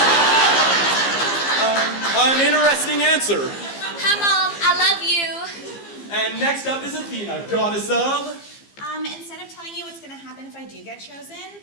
An interesting answer. Hi, Mom. I love you. And next up is Athena, goddess of... Instead of telling you what's going to happen if I do get chosen,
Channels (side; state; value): right; late; 15 ms